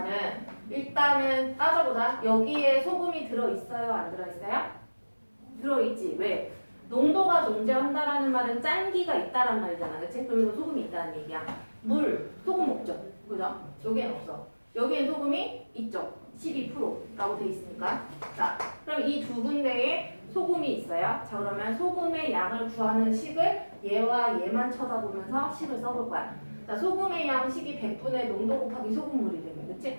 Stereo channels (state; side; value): inverted; both; correlation -1.00